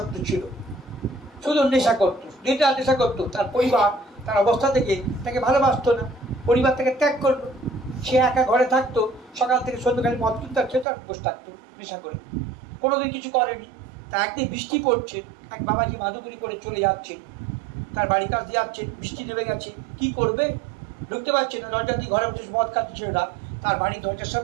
ছিল, শুধু নেশা করতো, নেশা করতো। তার পরিবার তার অবস্থা থেকে তাকে ভালোবাসতো না, পরিবার থেকে ত্যাগ করলো। সে একা ঘরে থাকতো, সকাল থেকে সন্ধ্যাকালে মদ কিনতে খেতে আর বসে থাকতো নেশা করে, কোনোদিন কিছু করেনি। তা একদিন বৃষ্টি পড়ছে, এক বাবাজি মাদুগুরি করে চলে যাচ্ছে, তার বাড়ির কাছ দিয়ে যাচ্ছে, বৃষ্টি নেমে গেছে, কি করবে ঢুকতে পারছে না, দরজা দিয়ে ঘরে বসে মদ খাচ্ছে ছেলেটা। তার বাড়ির দরজার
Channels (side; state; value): left; drops out; at 10.9 s